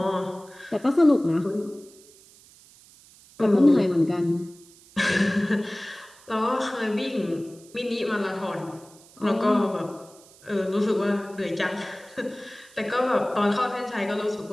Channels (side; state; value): right; noise; hiss, 25 dB below the sound